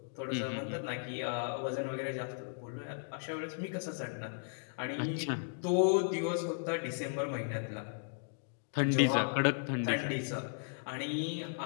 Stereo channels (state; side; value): silent; right; digital silence